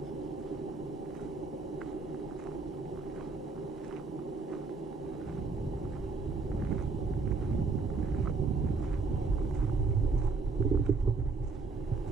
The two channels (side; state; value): left; quieter; 4.2 dB